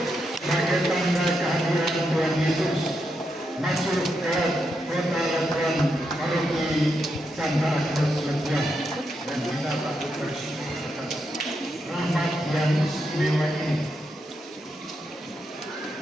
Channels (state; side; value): normal; both; correlation 0.83